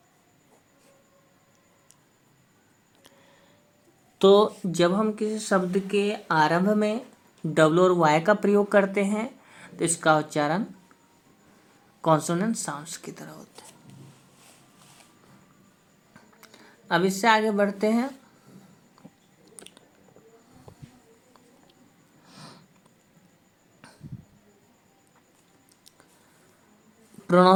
तो जब हम किसी शब्द के आरंभ में डब्लू और वाई का प्रयोग करते हैं तो इसका उच्चारण कॉन्सोनेंट साउंड्स की तरह होता है। अब इससे आगे बढ़ते हैं।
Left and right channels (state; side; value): identical; both; correlation 1.00